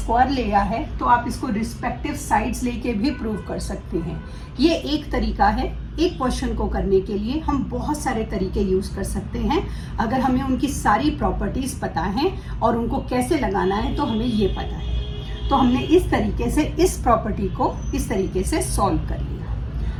लिया है तो आप इसको रिस्पेक्टिव साइड्स लेके भी प्रूव कर सकते हैं। ये एक तरीका है। एक क्वेश्चन को करने के लिए हम बहुत सारे तरीके यूज कर सकते हैं। अगर हमें उनकी सारी प्रॉपर्टीज पता है और उनको कैसे लगाना है तो हमें ये पता है। तो हमने इस तरीके से इस प्रॉपर्टी को इस तरीके से सॉल्व कर लिया।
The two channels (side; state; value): both; identical; correlation 1.00